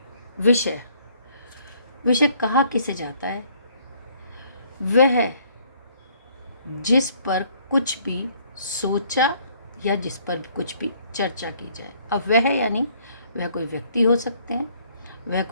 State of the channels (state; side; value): inverted; both; correlation -0.63